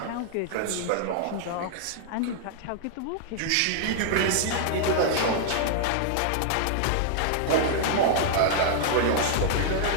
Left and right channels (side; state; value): both; different; correlation -0.01